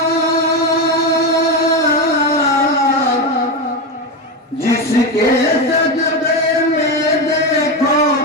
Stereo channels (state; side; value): normal; both; correlation 0.14